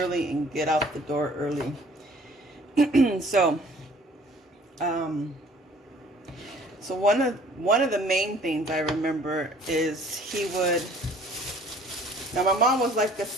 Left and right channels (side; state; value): both; normal; correlation 0.54